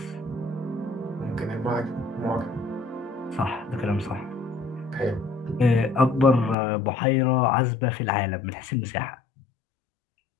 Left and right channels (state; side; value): drops out; right; at 6.6 s